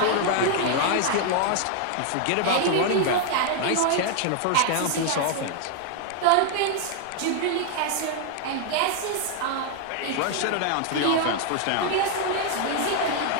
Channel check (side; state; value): both; different; correlation 0.00